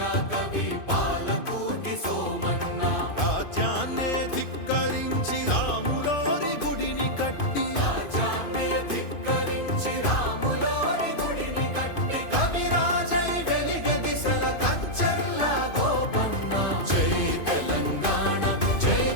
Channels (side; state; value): right; late; 2.5 ms